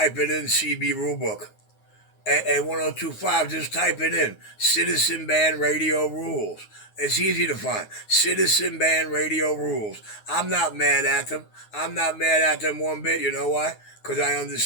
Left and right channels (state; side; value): late; right; 9.5 ms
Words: it in CB rulebook. Hey, 1025, just type it in. Citizen Band Radio Rules. It's easy to find. Citizen Band Radio Rules. I'm not mad at them. I'm not mad at them one bit. You know why? Because I